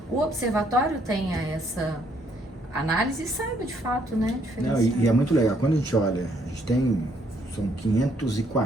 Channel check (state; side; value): normal; both; correlation 0.69